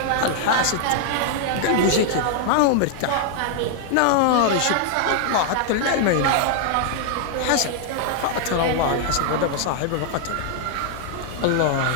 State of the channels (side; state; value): both; different; correlation -0.01